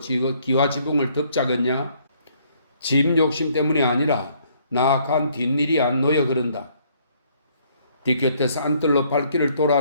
기와지붕을 덮자겠냐? 집 욕심 때문이 아니라 나간 뒷일이 안 놓여 그런다. 뒤곁에서 안뜰로 발길을 돌아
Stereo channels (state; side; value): inverted; both; correlation -0.66